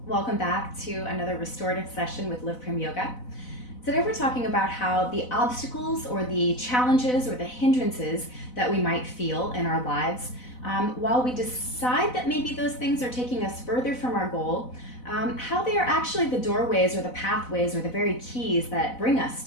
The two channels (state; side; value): late; right; 4.0 ms